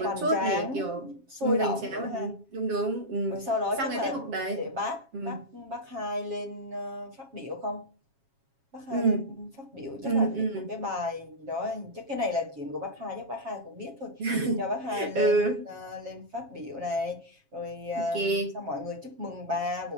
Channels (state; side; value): late; left; 7.3 ms